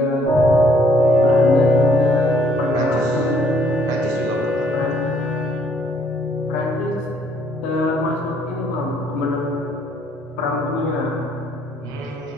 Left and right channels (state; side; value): normal; both; correlation 0.66